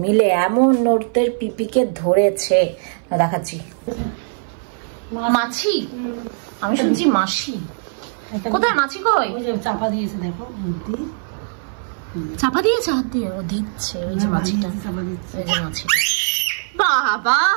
মিলে এমন ওদের পিপিকে ধরেছে, দেখাচ্ছি। মাছি? আমি শুনছি মাসি। কোথায় মাছি? কই? চাপা দিয়েছে, দেখো চাপা দিয়েছে হাত দিয়ে। ও দিচ্ছে ওই যে মাছিটা, ওই যে মাছিটা। বাবা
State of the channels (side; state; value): left; silent; 58 dB below the other